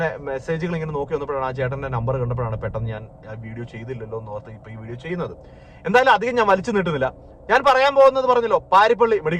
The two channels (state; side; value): identical; both; correlation 1.00